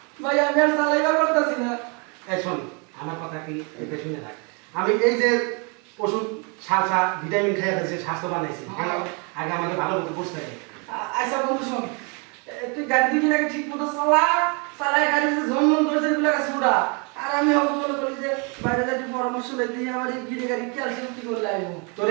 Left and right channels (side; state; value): left; quieter; 34.1 dB